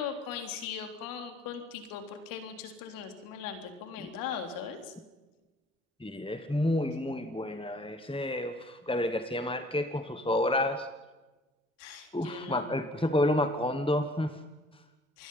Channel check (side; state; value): both; normal; correlation 0.54